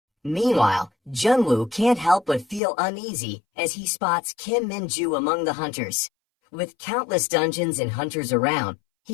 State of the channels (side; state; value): right; drops out; at 2.6 s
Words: Meanwhile, Jun-Woo can't help but feel uneasy as he spots Kim Minju among the hunters. With countless dungeons and hunters around,